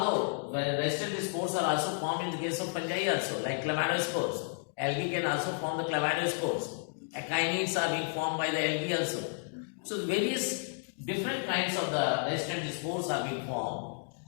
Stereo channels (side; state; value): right; silent; 56 dB below the other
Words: the resistant spores are also formed in the case of fungi also, like chlamydospores. Algae can also form the chlamydospores. Echinids are being formed by the algae also. So various different kinds of the resistant spores are being formed